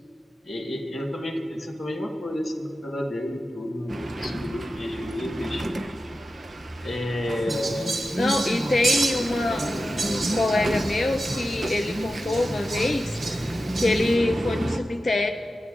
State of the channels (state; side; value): normal; both; correlation 0.92